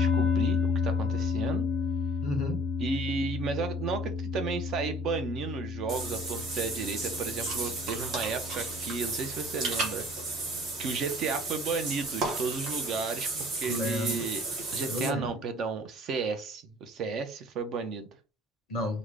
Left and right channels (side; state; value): both; normal; correlation 0.51